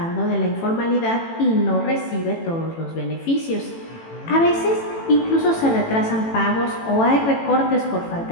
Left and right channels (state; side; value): late; right; 18 ms